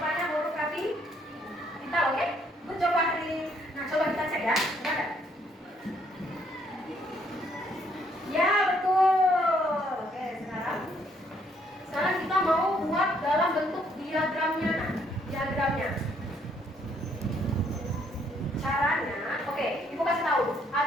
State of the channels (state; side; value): normal; both; correlation 0.68